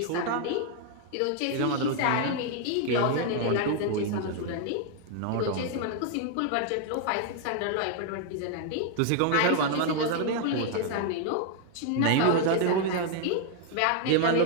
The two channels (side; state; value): both; different; correlation 0.00